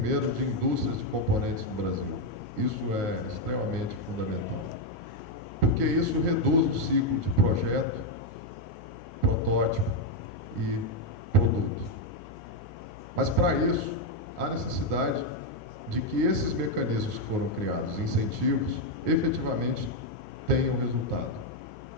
de indústrias de componentes no Brasil. Isso é extremamente fundamental, porque isso reduz o ciclo de projeto, protótipo e produto. Mas, para isso, há necessidade de que esses mecanismos que foram criados, incentivos, efetivamente tenham resultado.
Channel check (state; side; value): normal; both; correlation 0.03